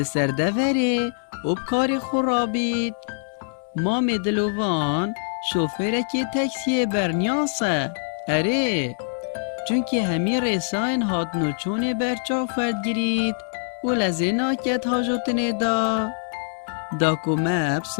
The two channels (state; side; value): silent; right; digital silence